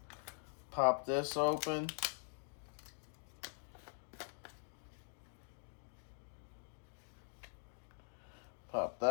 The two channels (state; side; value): silent; right; digital silence